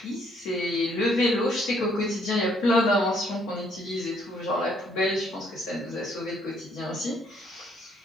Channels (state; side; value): normal; both; correlation 0.67